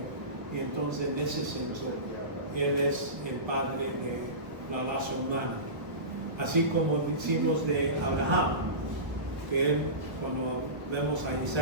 Y entonces en ese senso, Él es el padre de la raza humana. Así como decimos de Abraham, que él, cuando vemos a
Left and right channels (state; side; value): late; left; 1.0 ms